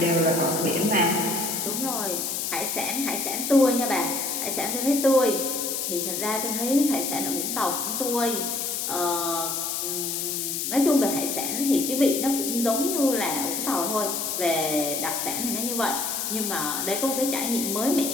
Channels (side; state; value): left; noise; hiss, 2 dB below the sound